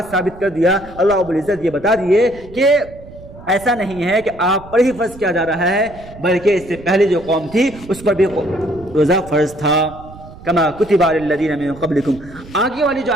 ثابت کر دیا، اللہ رب العزت یہ بتا دیے کہ ایسا نہیں ہے کہ آپ پر ہی فرض کیا جا رہا ہے، بلکہ اس سے پہلے جو قوم تھی اس پر بھی روزہ فرض تھا، کما کتب علی الذین من قبلکم۔ آگے والی جو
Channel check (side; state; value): right; noise; rumble, 18 dB below the sound